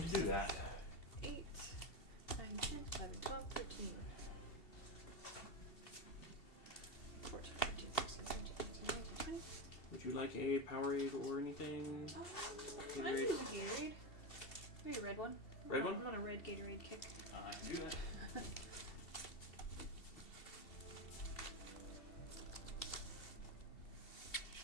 to do that. 8, 9, 10, 11, 12, 13, 14, 15, 16, 17, 18, 19, 20. Would you like a Powerade or anything? I Gatorade? use a Gatorade. Maybe a red one. Red one? I'm on a red Gatorade kick. I can do that.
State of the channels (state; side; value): late; right; 2.7 ms